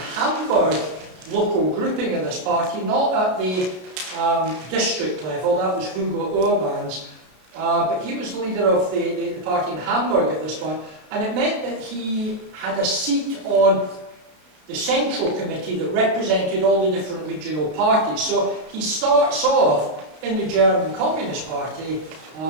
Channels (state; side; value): late; left; 32 ms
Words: Hamburg local grouping of this party, not at the district level, that was Hugo Urban's, but he was the leader of the party in Hamburg at this point, and it meant that he had a seat on the central committee that represented all the different regional parties. So he starts off in the German Communist Party